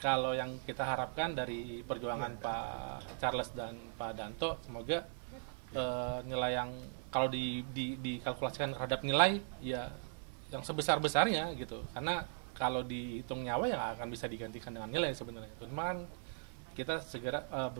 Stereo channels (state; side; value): silent; left; digital silence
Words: kalau yang kita harapkan dari perjuangan Pak Charles dan Pak Danto, semoga nilai yang kalau dikalkulasikan terhadap nilai ya yang sebesar-besarnya gitu. Karena kalau dihitung nyawa ya akan bisa digantikan dengan nilai sebenarnya. Cuman kita segera